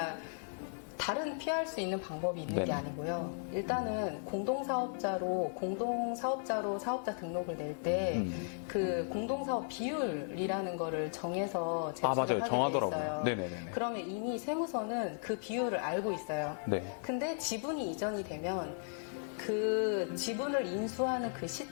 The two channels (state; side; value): silent; right; digital silence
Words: 다른 피할 수 있는 방법이 있는 게 네네. 아니고요. 일단은 공동사업자로 사업자 등록을 낼 때 그 공동사업 비율이라는 거를 정해서 제출을 맞아요. 하게 돼 정하더라고요. 있어요. 네네네. 그러면 이미 세무서는 그 비율을 알고 있어요. 네. 근데 지분이 이전이 되면 그 지분을 인수하는 그